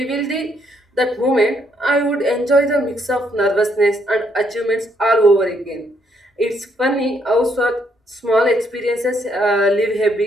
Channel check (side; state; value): both; normal; correlation 0.72